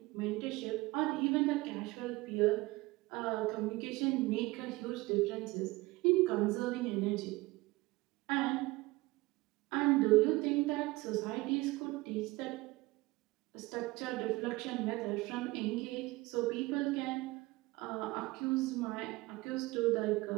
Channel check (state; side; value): quieter; left; 21.3 dB